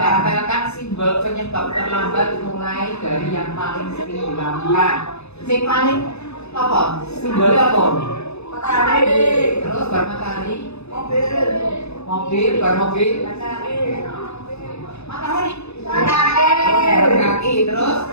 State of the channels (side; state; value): right; late; 0.80 ms